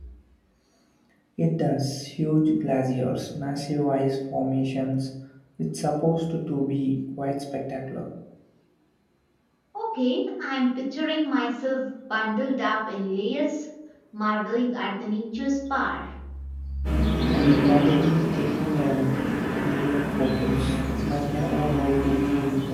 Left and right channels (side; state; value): both; identical; correlation 1.00